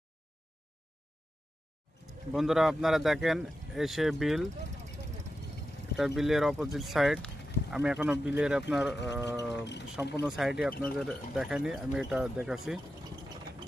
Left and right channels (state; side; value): normal; both; correlation 0.91